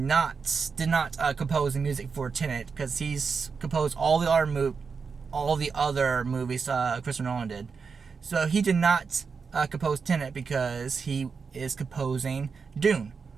not compose the music for Tenet, because he's composed all the other movies Christopher Nolan did. So he did not compose Tenet because he is composing Dune,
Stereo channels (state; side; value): quieter; left; 5.4 dB